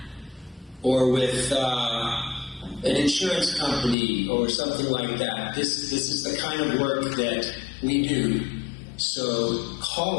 or with an insurance company or something like that, this is the kind of work that we do. So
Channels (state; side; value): drops out; right; at 4.0 s